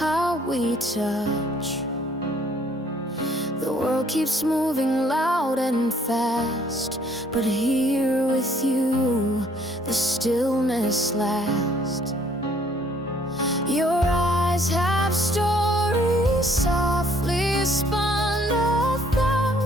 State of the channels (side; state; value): both; normal; correlation 0.62